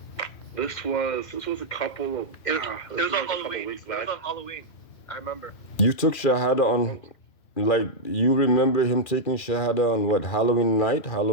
This was a couple of It was this was on like a couple of Halloween. weeks It was back. on Halloween. I remember. You took shahada Oh, on, like, you remember him taking shahada on what, Halloween night,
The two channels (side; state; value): right; late; 2.4 ms